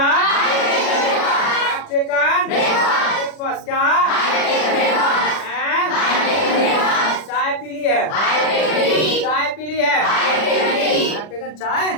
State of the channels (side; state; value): right; late; 40 ms